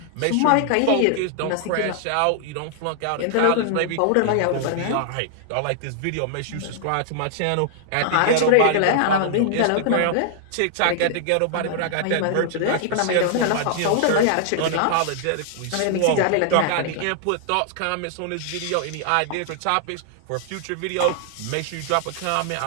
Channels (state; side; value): different; both; correlation -0.01